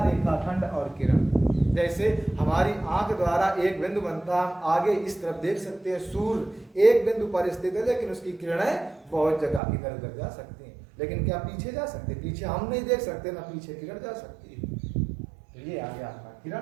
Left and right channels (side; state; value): left; drops out; at 9.6 s